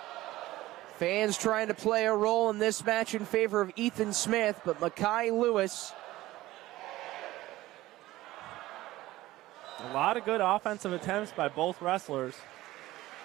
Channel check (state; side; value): quieter; left; 16.8 dB